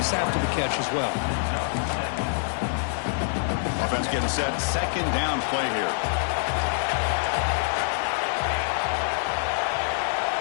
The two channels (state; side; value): silent; right; digital silence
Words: after the catch as well. Offense getting set. 2nd down play here.